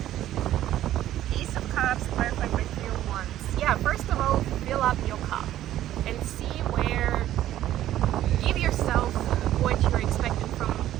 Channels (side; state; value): left; quieter; 13.0 dB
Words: Ace of Cups, clarified by Three of Wands. Yeah, first of all, fill up your cup and see where, give yourself what you're expecting from